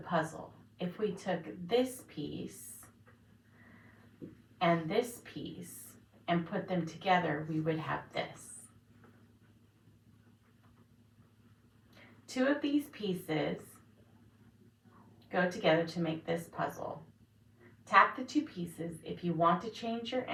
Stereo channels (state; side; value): identical; both; correlation 1.00